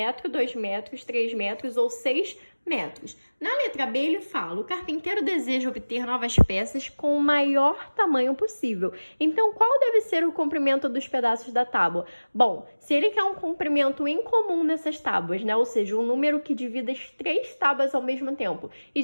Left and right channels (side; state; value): both; inverted; correlation -1.00